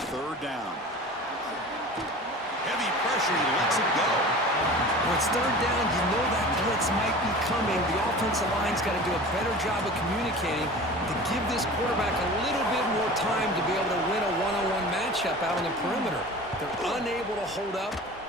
third down. Heavy pressure. He lets it go. When it's third down, you know that blitz might be coming. The offensive line's got to do a better job of communicating to give this quarterback a little bit more time to be able to win a one-on-one matchup out on the perimeter. They're unable to hold up,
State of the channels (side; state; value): both; normal; correlation 0.38